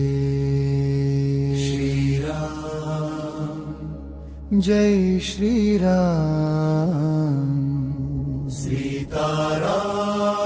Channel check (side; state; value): both; identical; correlation 1.00